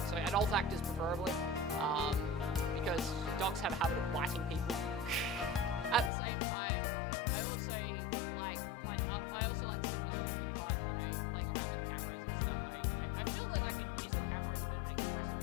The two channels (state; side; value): drops out; right; at 6.1 s